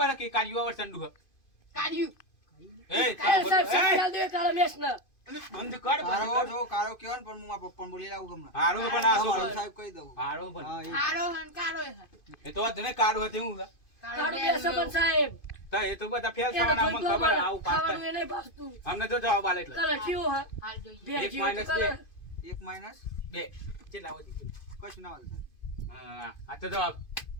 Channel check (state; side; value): late; right; 2.5 ms